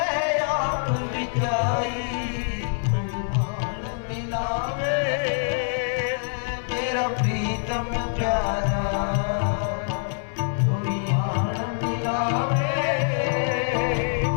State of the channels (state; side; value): silent; right; digital silence